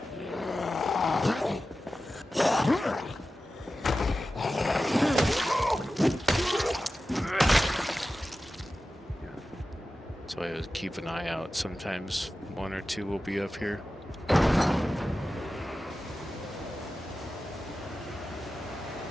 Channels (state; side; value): normal; both; correlation 0.94